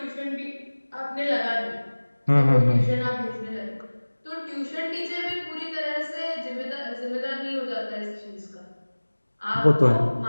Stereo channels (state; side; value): inverted; both; correlation -1.00